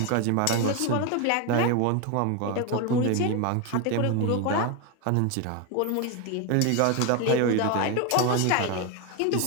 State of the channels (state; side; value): different; both; correlation 0.02